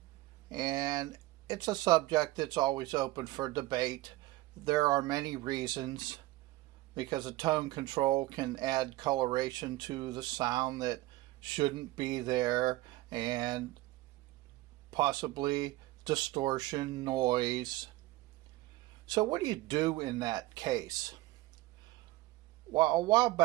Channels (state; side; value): quieter; left; 18.5 dB